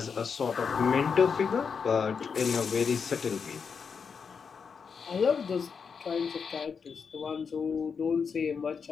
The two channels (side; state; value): right; quieter; 6.0 dB